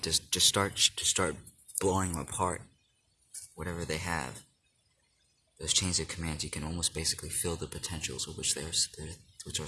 just start blowing them apart, whatever they have. Those chains of commands, you can almost basically feel the potentials of which are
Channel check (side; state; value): both; identical; correlation 1.00